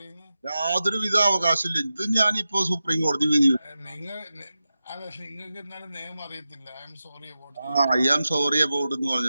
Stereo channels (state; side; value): inverted; both; correlation -0.92